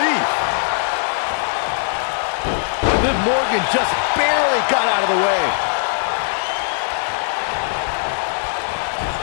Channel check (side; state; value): right; silent; digital silence